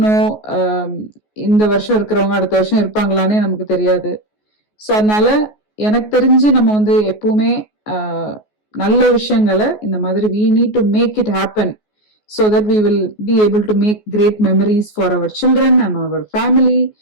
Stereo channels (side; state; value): right; late; 14 ms